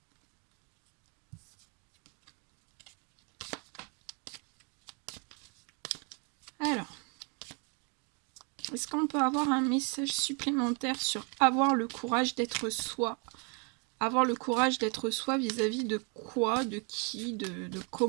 Alors, est-ce qu'on peut avoir un message supplémentaire sur avoir le courage d'être soi? Avoir le courage d'être soi vis-à-vis de quoi, de qui, de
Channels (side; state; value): left; quieter; 35.5 dB